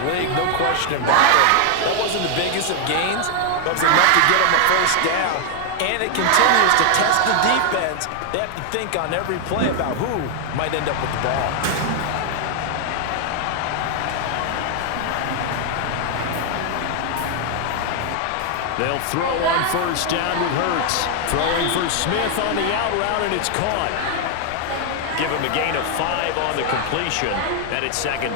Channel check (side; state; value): both; different; correlation 0.00